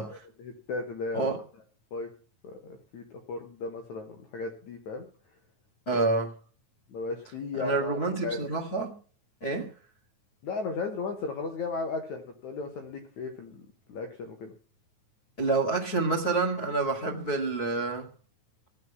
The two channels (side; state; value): right; late; 9.3 ms